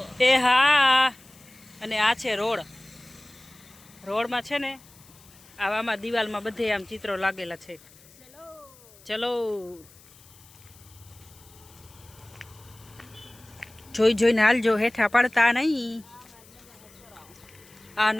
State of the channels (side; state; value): left; noise; hiss, 25 dB below the sound